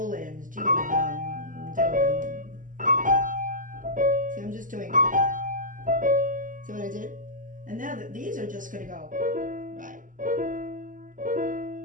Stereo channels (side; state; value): left; late; 0.38 ms